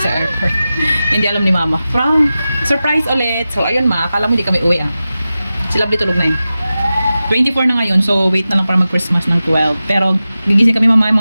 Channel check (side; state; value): both; inverted; correlation -0.94